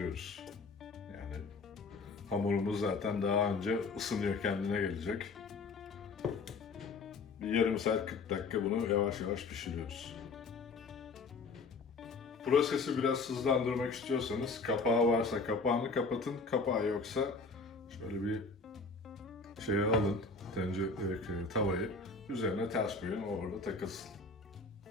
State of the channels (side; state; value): right; quieter; 4.1 dB